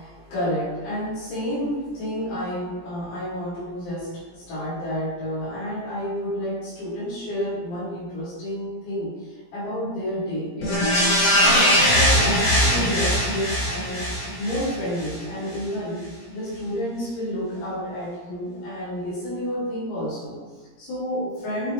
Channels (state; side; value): late; right; 17 ms